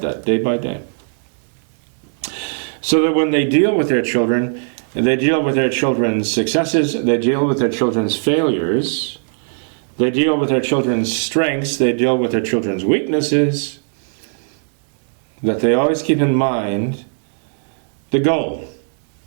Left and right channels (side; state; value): left; silent; digital silence